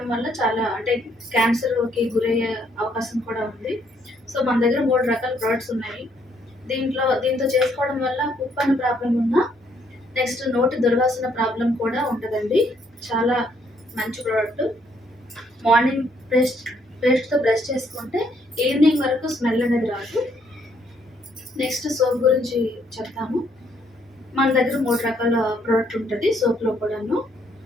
వల్ల చాలా అంటే క్యాన్సర్కి గురయ్యే అవకాశం కూడా ఉంది. సో మన దగ్గర 3 రకాల ప్రొడక్ట్స్ ఉన్నాయి. దీంతో చేసుకోవడం వల్ల కుప్పని ప్రాబ్లం ఉన్నా, నెక్స్ట్ నోటి దుర్వాసన ప్రాబ్లం కూడా ఉంటుందండి. చాలా మంచి ప్రోడక్ట్. మార్నింగ్ పేస్ట్తో బ్రష్ చేసుకుంటే ఈవినింగ్ వరకు స్మెల్ అనేది రాదు. నెక్స్ట్ సోప్ గురించి చెప్తాము. మన దగ్గర 3 రకాల ప్రోడక్ట్ ఉంటుంది సోప్లో కూడాను.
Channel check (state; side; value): normal; both; correlation 0.70